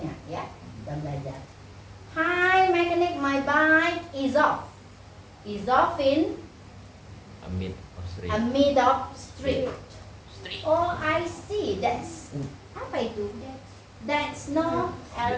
ya. Kita belajar. Hi, mechanic, my bike is off. Is off in Amid of street. a mid of street. Street. Oh, I see. That's apa itu? That's no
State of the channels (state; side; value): identical; both; correlation 1.00